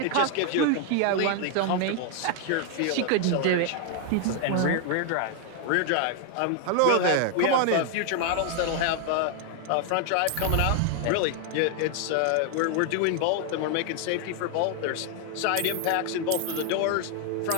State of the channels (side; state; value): both; different; correlation 0.00